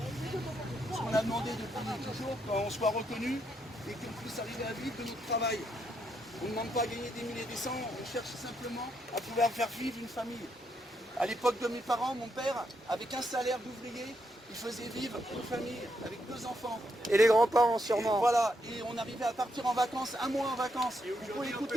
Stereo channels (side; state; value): both; normal; correlation 0.78